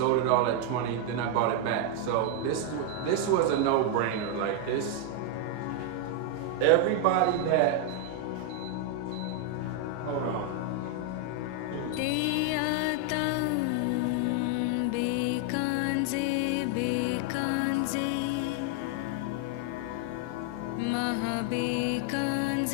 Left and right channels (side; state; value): both; different; correlation 0.00